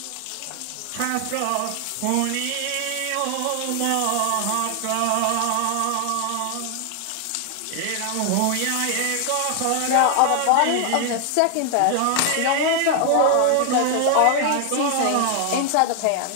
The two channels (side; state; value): both; different; correlation 0.00